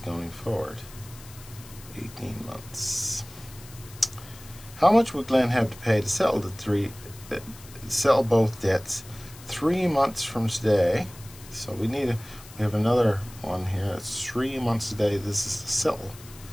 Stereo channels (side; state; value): left; noise; hiss, 19 dB below the sound